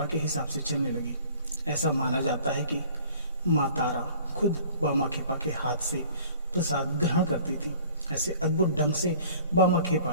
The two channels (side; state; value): both; inverted; correlation -0.51